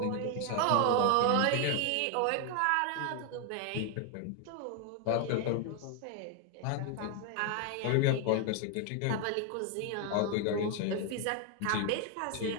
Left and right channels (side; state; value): both; different; correlation 0.01